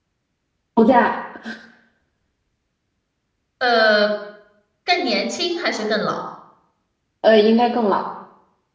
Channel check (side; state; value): both; identical; correlation 1.00